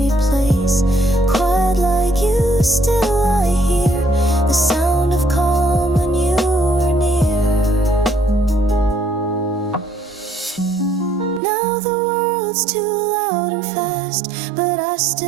world's too loud and fast, but I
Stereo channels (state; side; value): drops out; left; at 11.4 s